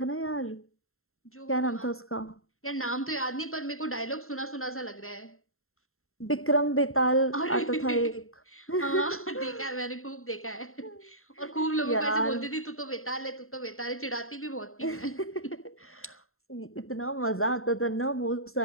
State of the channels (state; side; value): late; right; 0.62 ms